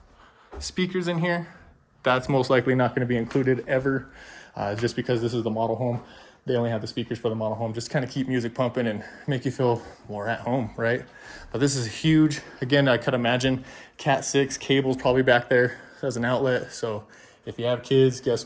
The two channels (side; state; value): both; identical; correlation 1.00